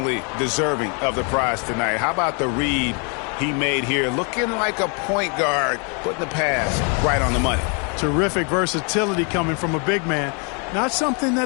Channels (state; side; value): quieter; right; 36.2 dB